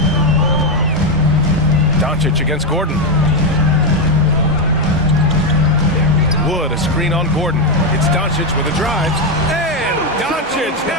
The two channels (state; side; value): normal; both; correlation 0.06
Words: Doncic against Gordon. Wood, a screen on Gordon. It's Doncic with a drive. And Doncic